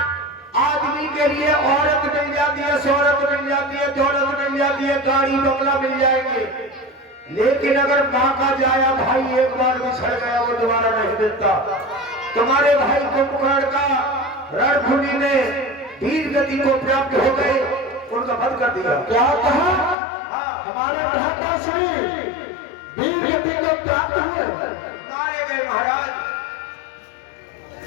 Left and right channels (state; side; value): drops out; right; at 20.0 s